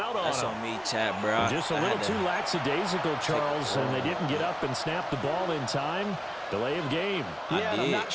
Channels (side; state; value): both; identical; correlation 1.00